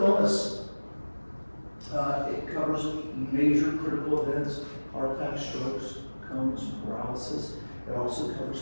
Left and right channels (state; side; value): inverted; both; correlation -1.00